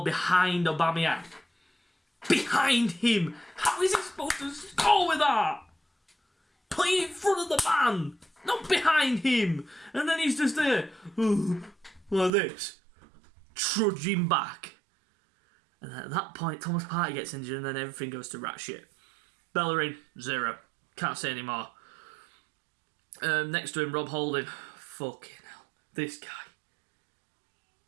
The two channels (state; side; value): drops out; left; at 12.3 s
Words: behind Aubameyang. Behind him! How is he supposed to score with that? Play in front of the man, not behind him. And then he's just there, like this, trudging back. And at that point, Thomas Partey gets injured and then everything goes to rat shit. Bellerin, 0. Can't say any more. Next to him, Rob Holding. Fucking hell. This guy.